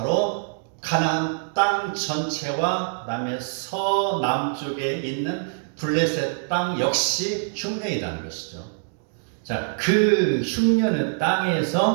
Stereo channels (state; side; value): silent; left; digital silence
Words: 가나안 땅 전체와 그다음에 서남쪽에 있는 블레셋 땅 역시 흉년이라는 것이죠. 자, 그 흉년의